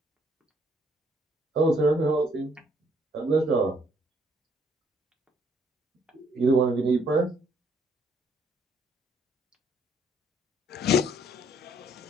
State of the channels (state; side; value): normal; both; correlation 0.67